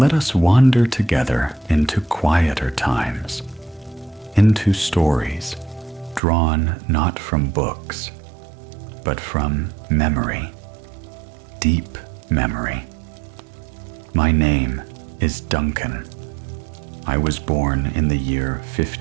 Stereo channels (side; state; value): left; drops out; at 6.2 s